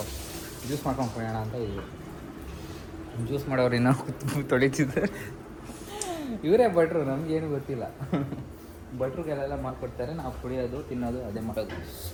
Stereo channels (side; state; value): both; identical; correlation 1.00